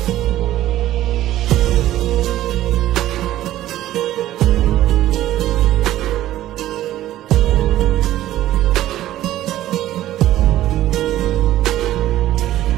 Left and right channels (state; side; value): quieter; left; 13.9 dB